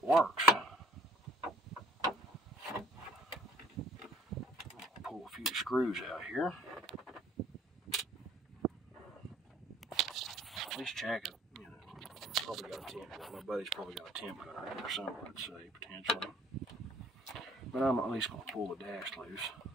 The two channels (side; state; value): both; normal; correlation 0.59